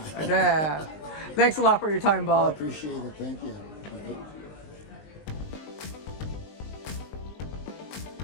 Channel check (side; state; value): right; late; 19 ms